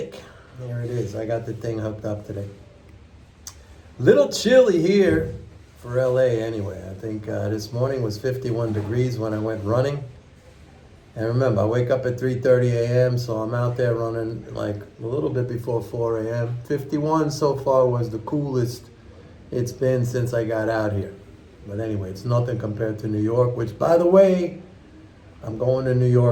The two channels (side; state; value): both; identical; correlation 1.00